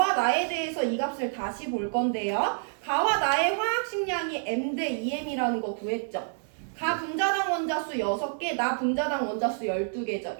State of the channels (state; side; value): silent; left; digital silence